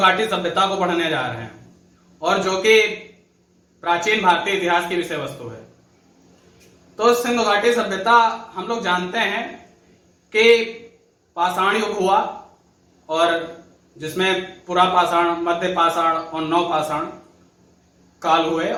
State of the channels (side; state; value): both; identical; correlation 1.00